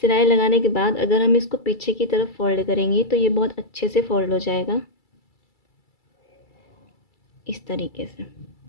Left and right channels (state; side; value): late; right; 2.3 ms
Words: लगाने के बाद अगर हम इसको पीछे की तरफ फ़ोल्ड करेंगे तो ये बहुत अच्छे से फ़ोल्ड हो जाएगा, इस तरीके से।